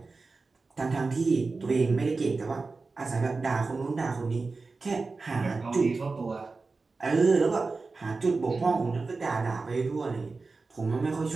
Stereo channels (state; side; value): quieter; left; 4.0 dB